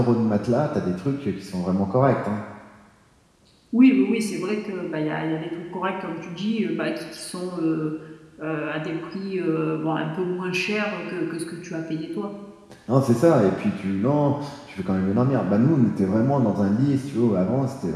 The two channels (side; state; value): both; identical; correlation 1.00